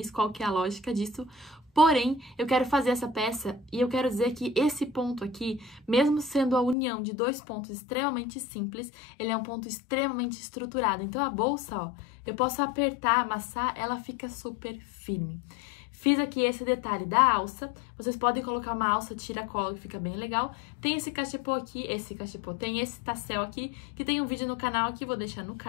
qual que é a lógica disso. Porém, eu quero fazer essa peça e eu quero dizer que esse ponto aqui, mesmo sendo a união de dois pontos extremamente simples, ele é um ponto extremamente estruturado. Então, a bolsa, ó, eu posso apertar, amassar, ela fica super firme. Fiz aqui esse detalhe da alça, vocês podem colocar uma alça tira-colo que fica bem legal. Tem esse cachepô aqui, tem esse tassel aqui, que tem um vídeo no canal aqui, vou deixar no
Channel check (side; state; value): right; drops out; at 6.8 s